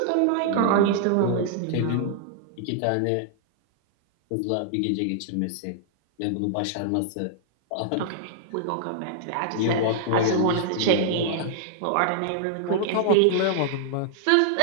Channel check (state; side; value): different; both; correlation -0.01